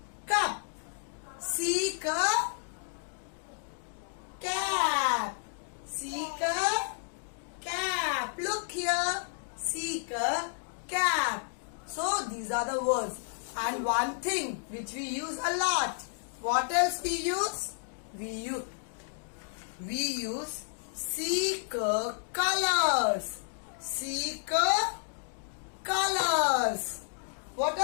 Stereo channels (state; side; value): silent; right; digital silence